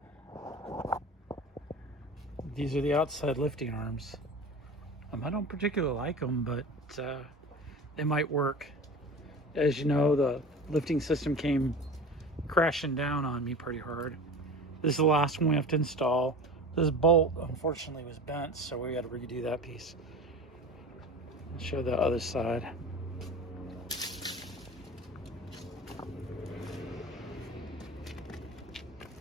These are the outside lifting arms. I don't particularly like them, but they might work. As you know, the lifting system came crashing down on me pretty hard. This is the last one we have to install. This bolt, unfortunately, was bent, so we got to redo that piece. I'll show the other side.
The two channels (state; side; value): normal; both; correlation 0.34